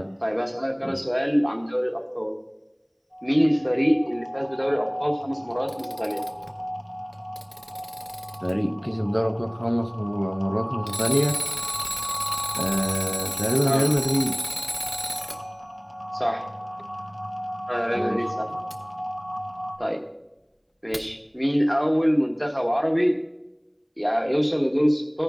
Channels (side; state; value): both; identical; correlation 1.00